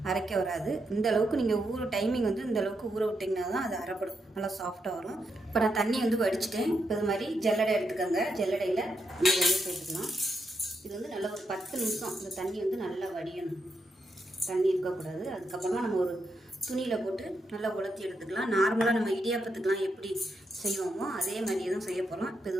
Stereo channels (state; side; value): normal; both; correlation 0.82